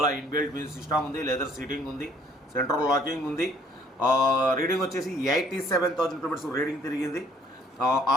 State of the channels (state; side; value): normal; both; correlation 0.60